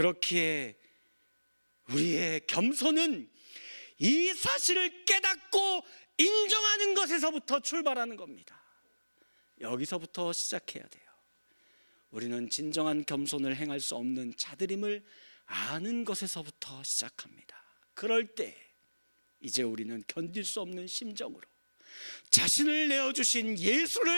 우리의 겸손은 이 사실을 깨닫고 인정하는 것에서부터 출발하는 겁니다. 여기서부터 시작해야 돼요. 우리는 진정한 겸손을 행할 수 없는 자들임을 아는 것에서부터 시작합니다. 그럴 때 이제 우리는 견딜 수 없는 심정으로 자신을 내어주신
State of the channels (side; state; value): both; inverted; correlation -1.00